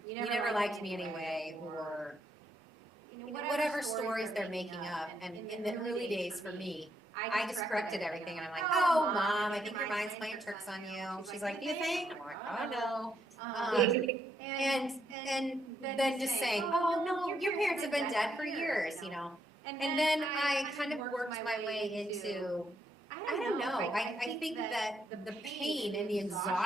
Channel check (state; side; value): normal; both; correlation 0.76